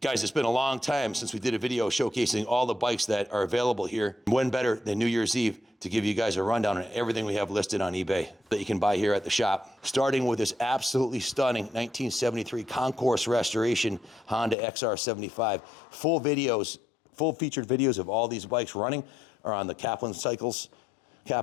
Guys, it's been a long time since we did a video showcasing all the bikes that are available here. When better than New Year's Eve to give you guys a rundown on everything we have listed on eBay that you can buy here at the shop. Starting with this absolutely stunning 1973 Concourse restoration Honda XR75. Full featured videos of all these bikes running are on the Kaplan Cycles,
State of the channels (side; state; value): right; drops out; at 14.6 s